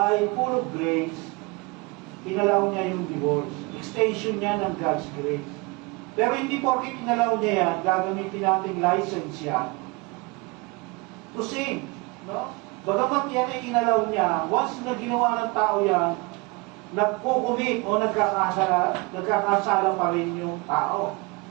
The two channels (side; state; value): left; quieter; 26.8 dB